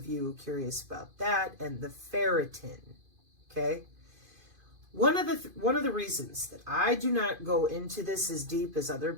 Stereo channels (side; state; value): left; late; 2.5 ms